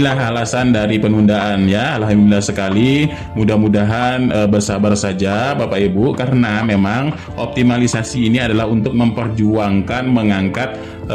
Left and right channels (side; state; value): both; identical; correlation 1.00